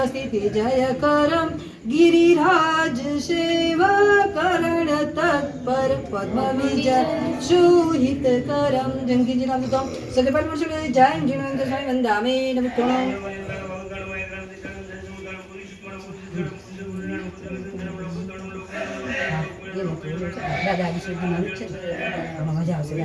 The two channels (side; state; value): both; identical; correlation 1.00